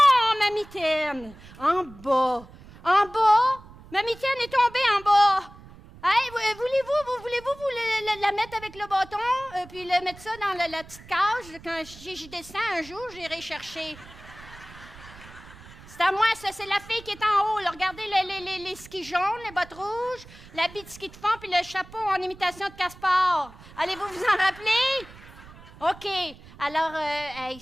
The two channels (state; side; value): noise; right; rumble, 20 dB below the sound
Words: ma mitaine! En bas! Ma mitaine est tombée en bas! Hey, voulez-vous la mettre avec le bâton, puis mettre ça dans la petite cage? Quand j'y descends un jour, j'irai chercher. C'est à moi, ça, c'est la fille qui est en haut. Là. Regardez les skis jaunes, les bottes rouges, l'habit de ski de fond, puis le chapeau en imitation de Caspar. Allez-vous vous en rappeler? OK. Alors,